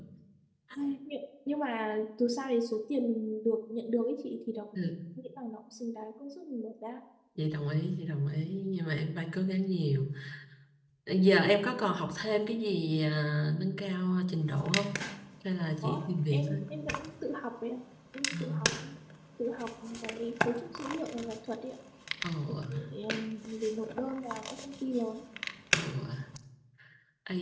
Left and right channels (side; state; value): both; identical; correlation 1.00